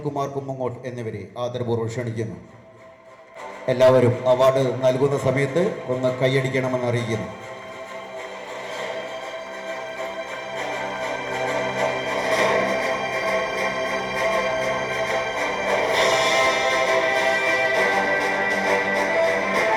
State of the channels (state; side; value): identical; both; correlation 1.00